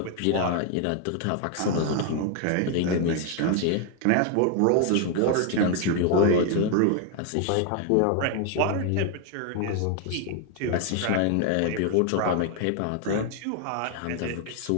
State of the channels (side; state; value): both; different; correlation 0.01